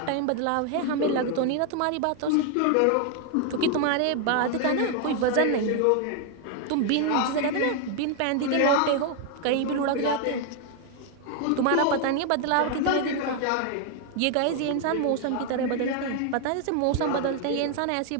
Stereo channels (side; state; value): both; different; correlation 0.00